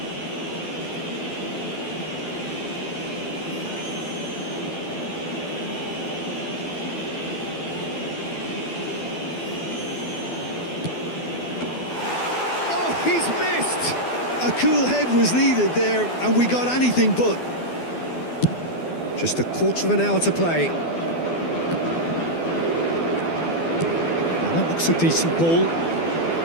Oh, he's missed! A cool head was needed there, and we got anything but. Just a quarter of an hour to play. Now that looks a decent ball.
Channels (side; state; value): right; late; 12 ms